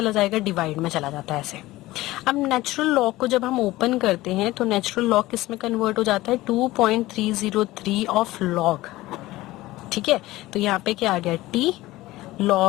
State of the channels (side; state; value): right; quieter; 17.9 dB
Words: जाएगा, डिवाइड में चला जाता है ऐसे। अब नेचुरल लॉग को जब हम ओपन करते हैं तो नेचुरल लॉग किस में कन्वर्ट हो जाता है, 2.303 ऑफ लॉग, ठीक है। तो यहाँ पे क्या आ गया, t